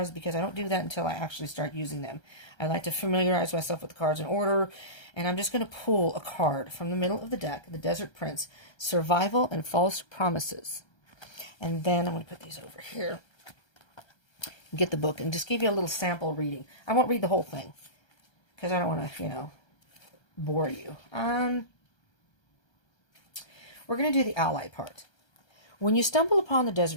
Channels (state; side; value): late; right; 1.3 ms